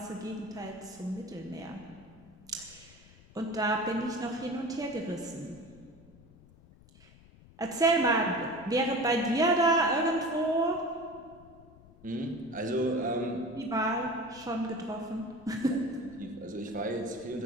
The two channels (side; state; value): left; noise; rumble, 23 dB below the sound